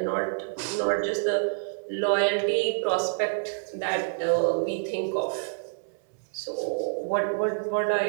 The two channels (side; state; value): left; silent; 60 dB below the other